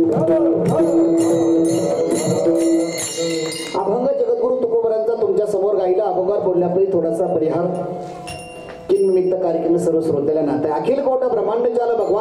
अभंग जगद्गुरु तुकोबरांचा तुमच्या समोर गायला अभंगावर बोलण्यापूर्वी थोडासा परिहार निमित्त कार्यक्रम सर्व श्रोत्याला नाते अखिल कोट ब्रह्मांड जाल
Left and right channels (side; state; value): both; identical; correlation 1.00